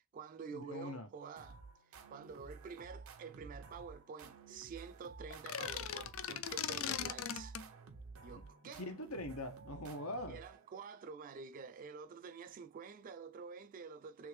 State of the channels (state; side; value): normal; both; correlation 0.03